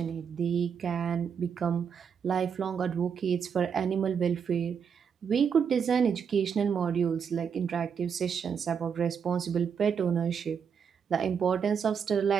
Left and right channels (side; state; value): left; quieter; 6.9 dB